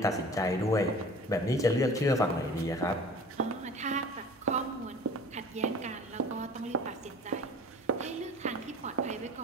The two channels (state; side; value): normal; both; correlation 0.42